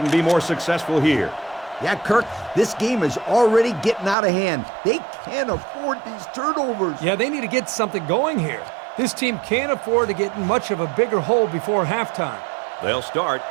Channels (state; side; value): drops out; left; at 4.2 s